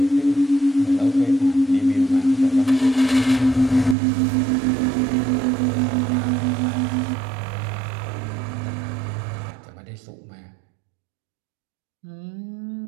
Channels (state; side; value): drops out; left; at 4.0 s